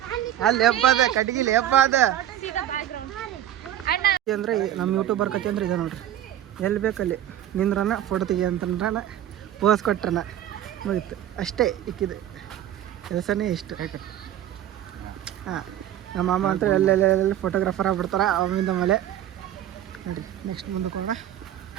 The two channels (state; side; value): quieter; left; 11.7 dB